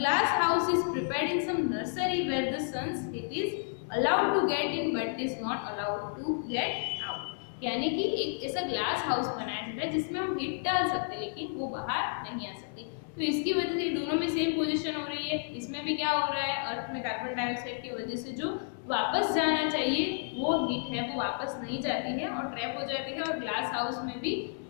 house is prepared in some nursery where the sun's heat is allowed to get in but is not allowed to get out. यानी कि एक ऐसा ग्लास हाउस बनाया जाता है जिसमें हम हीट डाल सकते हैं लेकिन वो बाहर नहीं आ सकती। तो इसकी वजह से दोनों में सेम पोजीशन हो रही है। इसमें भी क्या हो रहा है? अर्थ में कार्बन डाइऑक्साइड की वजह से जो वापस जाना चाहिए वो हीट है वो वापस नहीं जाती है और ट्रैप हो जाती है, और ग्लास हाउस में भी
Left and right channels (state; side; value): silent; right; 57 dB below the other